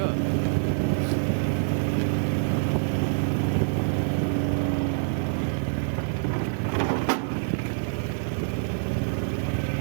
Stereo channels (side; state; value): left; silent; digital silence